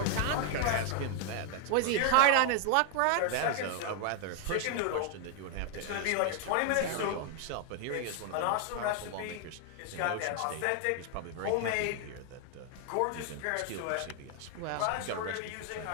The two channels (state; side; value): different; both; correlation 0.00